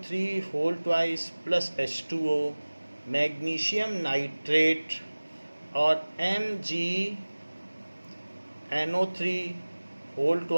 whole twice plus H2O, magnesium nitrate, और MgNO3 whole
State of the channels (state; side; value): inverted; both; correlation -1.00